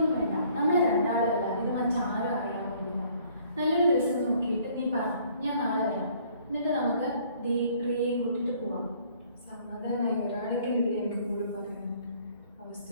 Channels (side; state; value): both; inverted; correlation -0.60